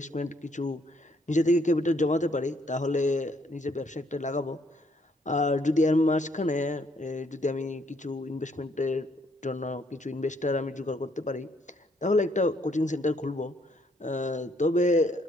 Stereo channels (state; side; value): normal; both; correlation 0.68